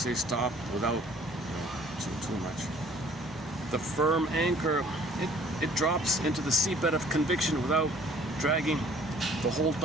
stop without too much. The firm anchor, it drops into the seabed of conviction without dragging the whole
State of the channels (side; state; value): both; normal; correlation 0.55